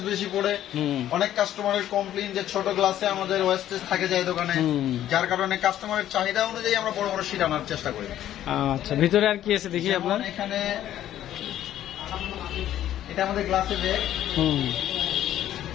বেশি পড়ে। অনেক কাস্টমারের কমপ্লেইন যে ছোট গ্লাসে আমাদের ওয়েস্টেজ থাকে যায় দোকানে, যার কারণে কাস্টমারের চাহিদা অনুযায়ী আমরা বড় শীট আনার চেষ্টা করি। আচ্ছা, ভিতরে আর কি আছে দেখি আপনার। এখানে এটা আমাদের গ্লাসের ব্যাগ।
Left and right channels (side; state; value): right; quieter; 12.0 dB